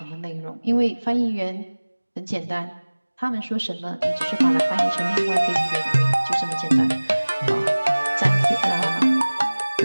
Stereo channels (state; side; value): inverted; both; correlation -1.00